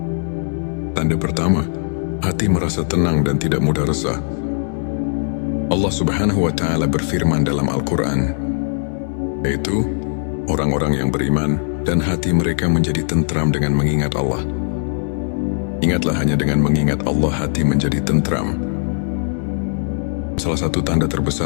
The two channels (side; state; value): right; silent; digital silence